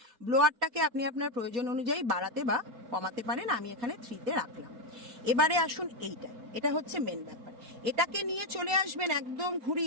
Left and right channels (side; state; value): left; late; 4.2 ms